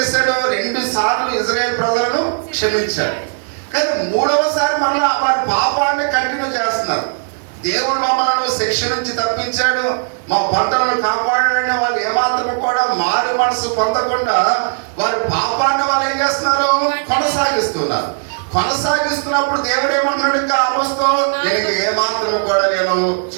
2 సార్లు ఇశ్రాయేలు ప్రజలను క్షమించాడు. కానీ 3వసారి మళ్ళా వారి పాపాన్ని కంటిన్యూ చేస్తున్నారు. దేవుడు మమ్మల్ని శిక్ష నుంచి తప్పించాడు, మా పంటలను కాపాడాడని వాళ్ళు ఏమాత్రం కూడా మారు మనసు పొందకుండా వారి పాపాన్ని వాళ్ళు ఏం చేస్తున్నారు? కొనసాగిస్తున్నప్పుడు దేవుడు ఏమంటున్నాడు? ఇంకా ఆమోస్తో, నేను ఏమాత్రం కూడా నేను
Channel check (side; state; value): left; silent; digital silence